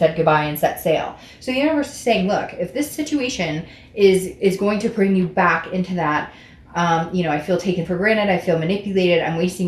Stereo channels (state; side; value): identical; both; correlation 1.00